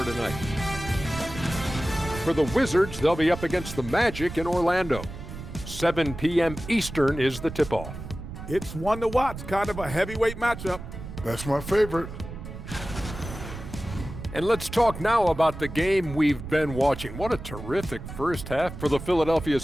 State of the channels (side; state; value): right; noise; rumble, 10 dB below the sound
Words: tonight. For the Wizards, they'll be up against the Magic in Orlando. 7 p.m. Eastern is the tip-off. It's one to watch, kind of a heavyweight matchup. That's my favorite. And let's talk now about the game we've been watching. What a terrific first half for the Philadelphia